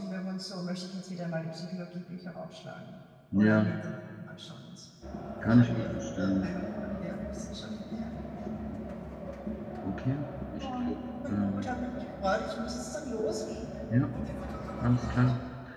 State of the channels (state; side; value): identical; both; correlation 1.00